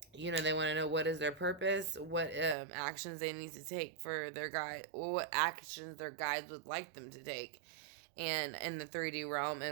They want to know what is their purpose, what actions they need to take for their guide, or what actions their guides would like them to take, and in the 3D realm,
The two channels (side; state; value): left; drops out; at 2.6 s